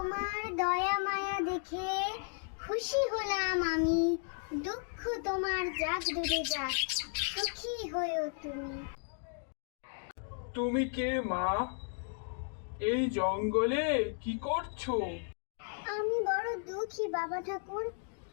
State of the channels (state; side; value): silent; right; 55 dB below the other